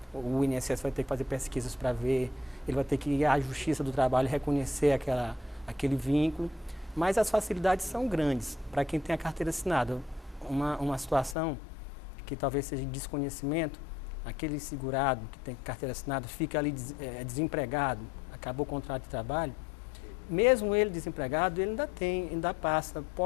o INSS vai ter que fazer pesquisas para ver, ele vai ter que ir à Justiça do Trabalho e reconhecer aquele vínculo, mas as facilidades são grandes para quem tem a carteira assinada. Uma situação que talvez seja de desconhecimento, aquele segurado que tem carteira assinada fica ali desempregado, acabou o contrato de trabalho, mesmo ele desempregado, ele ainda passa,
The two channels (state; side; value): drops out; right; at 11.4 s